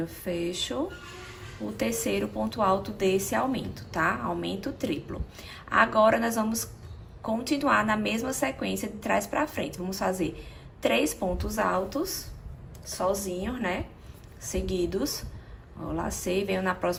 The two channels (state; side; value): identical; both; correlation 1.00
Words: fecho o terceiro ponto alto desse aumento, tá? Aumento triplo. Agora, nós vamos continuar na mesma sequência de trás pra frente. Vamos fazer 3 pontos altos, sozinhos, né? Seguidos. Ó, lacei, venho na